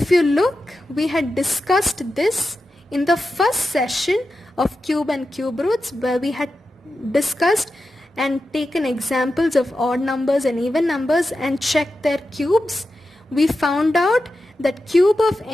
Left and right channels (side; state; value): both; normal; correlation 0.91